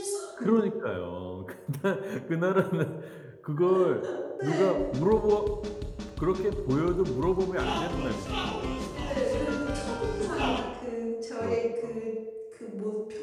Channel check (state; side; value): identical; both; correlation 1.00